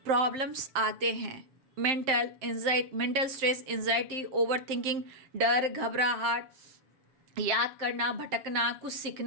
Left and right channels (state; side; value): late; left; 7.6 ms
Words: प्रॉब्लम्स आते हैं, mental stress, anxiety, over thinking, डर, घबराहट, याद करना, भटकना, कुछ